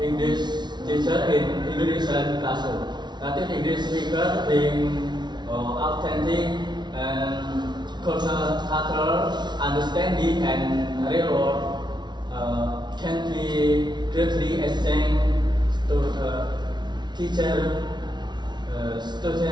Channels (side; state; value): left; late; 0.20 ms